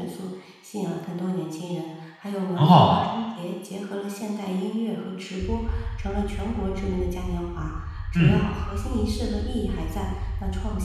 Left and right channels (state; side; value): identical; both; correlation 1.00